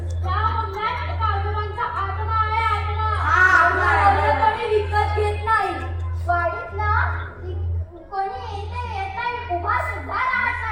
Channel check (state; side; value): identical; both; correlation 1.00